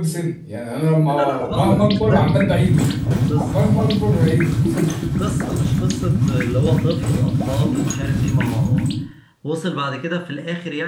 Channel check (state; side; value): identical; both; correlation 1.00